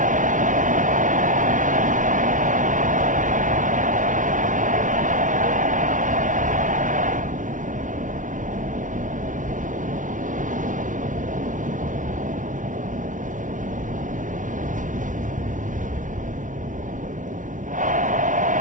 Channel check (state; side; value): late; left; 0.37 ms